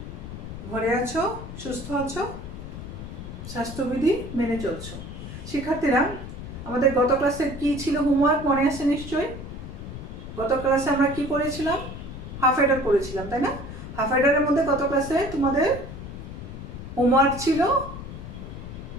ঘরে আছো, সুস্থ আছো, স্বাস্থ্যবিধি মেনে চলছো। শিক্ষার্থীরা, আমাদের গত ক্লাসে কি ছিল হোমওয়ার্ক মনে আছে নিশ্চয়ই? গত ক্লাসে আমরা কি করেছিলাম? হাফ এডার করেছিলাম, তাই না? হাফ এডারের মধ্যে গত ক্লাসে তোমাদের হোমওয়ার্ক ছিল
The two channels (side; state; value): left; noise; rumble, 10 dB below the sound